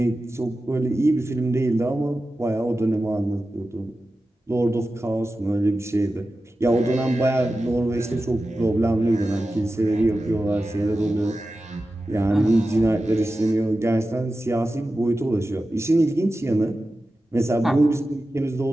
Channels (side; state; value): both; normal; correlation 0.93